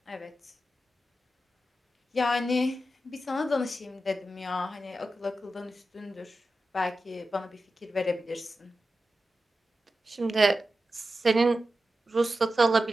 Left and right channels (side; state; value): both; normal; correlation 0.91